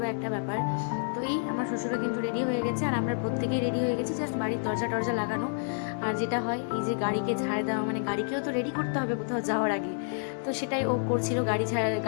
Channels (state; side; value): silent; right; digital silence